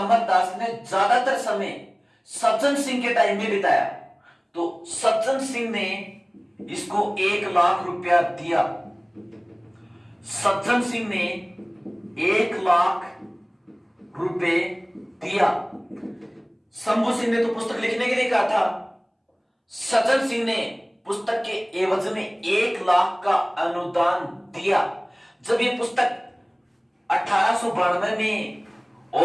दास ने ज्यादातर समय सज्जन सिंह के टाइम में बिताया, तो सज्जन सिंह ने इसको 1 लाख रुपया दिया। सज्जन सिंह ने 1 लाख रुपए दिया। शंभू सिंह ने तो पुस्तक लिखने के लिए कहा था, सज्जन सिंह ने पुस्तक के एवज में 1 लाख का अनुदान दिया। जब ये पुस्तक 1892 में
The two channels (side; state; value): both; identical; correlation 1.00